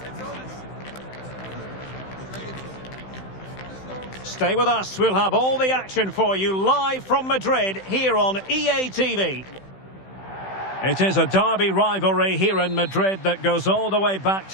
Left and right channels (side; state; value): right; late; 16 ms